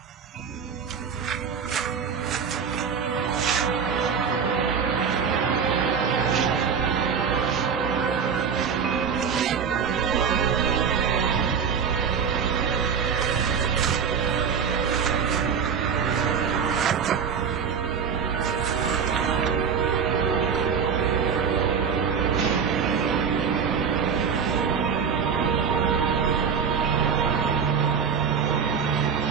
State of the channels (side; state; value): left; quieter; 6.6 dB